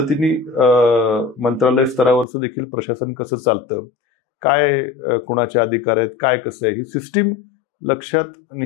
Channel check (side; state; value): right; drops out; at 2.2 s